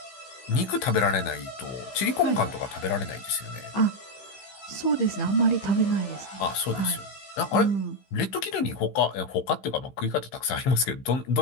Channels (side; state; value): right; late; 15 ms